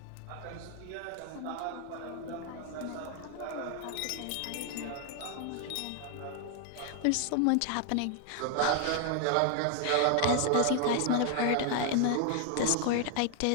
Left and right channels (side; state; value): both; different; correlation 0.00